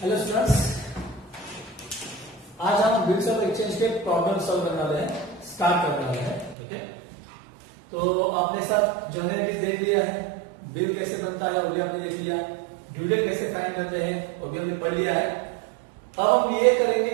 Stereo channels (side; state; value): left; drops out; at 6.6 s